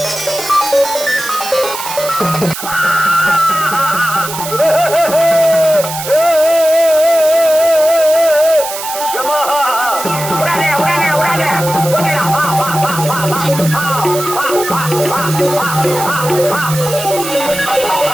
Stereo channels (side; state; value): right; noise; hiss, 8 dB below the sound